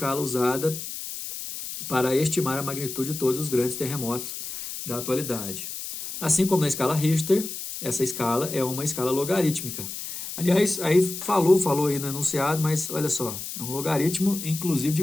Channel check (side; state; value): left; noise; hiss, 8 dB below the sound